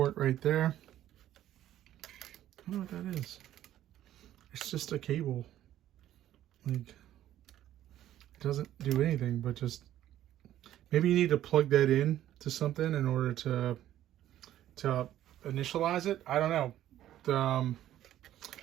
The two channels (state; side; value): quieter; left; 12.6 dB